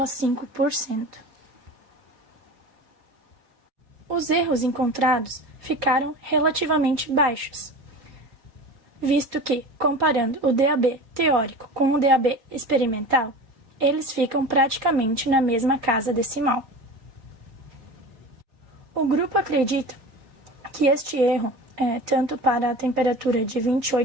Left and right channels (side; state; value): left; late; 4.5 ms